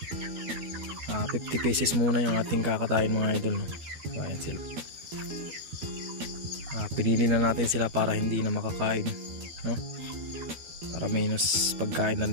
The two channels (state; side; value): late; left; 13 ms